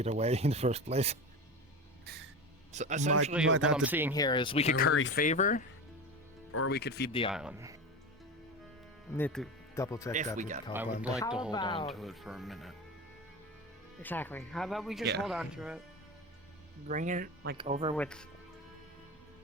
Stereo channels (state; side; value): normal; both; correlation 0.25